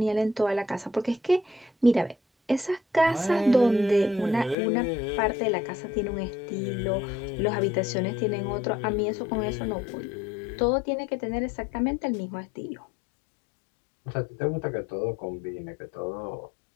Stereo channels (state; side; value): drops out; right; at 4.5 s